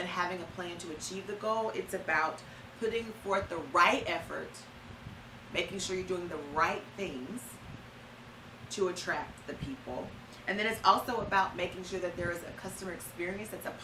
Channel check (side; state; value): both; identical; correlation 1.00